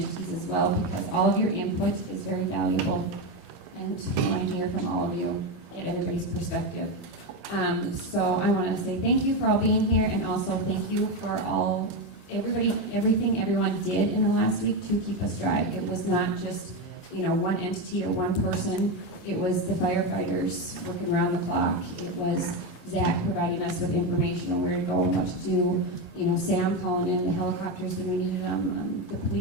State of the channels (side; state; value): left; late; 2.2 ms